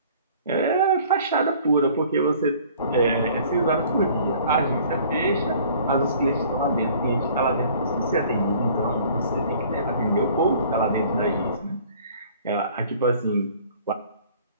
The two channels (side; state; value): both; inverted; correlation -0.52